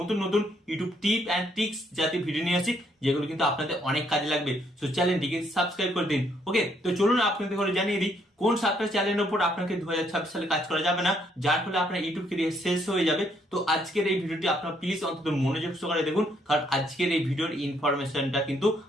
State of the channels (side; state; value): both; normal; correlation 0.70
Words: নতুন ইউটিউব টিপ অ্যান্ড ট্রিক্স জাতীয় ভিডিও নিয়ে আসি, যেগুলো কিন্তু আপনাদের অনেক কাজে লাগবে। সো চ্যানেলটিকে সাবস্ক্রাইব করে দিন। ওকে, তো চলুন আপনাদের ঘরে জানিয়ে দিই কোন 7টা চ্যানেলের উপর আপনাকে 2026 সালে কাজ করা যাবে না, যার ফলে আপনার ইউটিউব ক্যারিয়ার শেষ হয়ে যাবে। তো আজকের এই ভিডিওটি আপনারা প্লিজ অন্তত মনোযোগ সহকারে দেখুন, কারণ আজকের এই ভিডিওর ইনফরমেশনটা কিন্তু